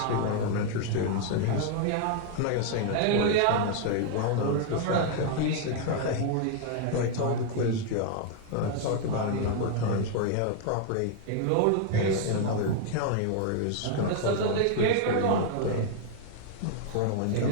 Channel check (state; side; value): different; both; correlation 0.00